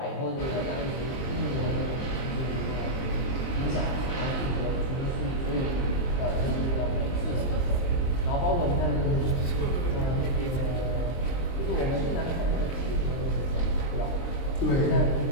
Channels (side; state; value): right; late; 23 ms